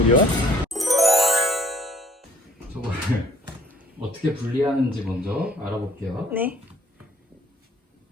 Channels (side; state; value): both; normal; correlation 0.59